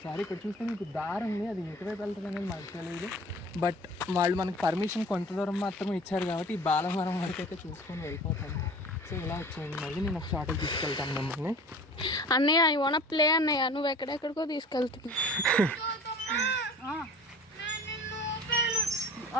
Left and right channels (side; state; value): both; normal; correlation 0.43